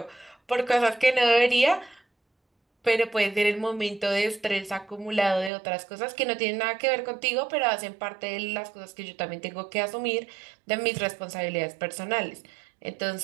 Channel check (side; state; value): left; drops out; at 5.5 s